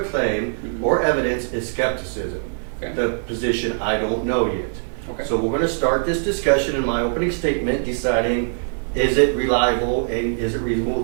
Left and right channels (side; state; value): left; silent; 55 dB below the other